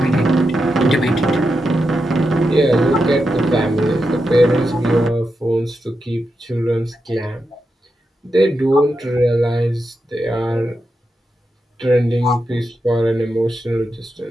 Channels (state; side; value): normal; both; correlation 0.87